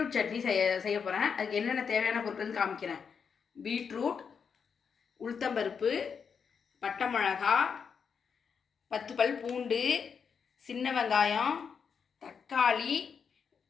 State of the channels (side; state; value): right; quieter; 6.4 dB